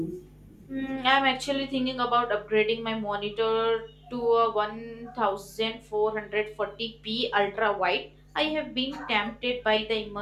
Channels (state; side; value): identical; both; correlation 1.00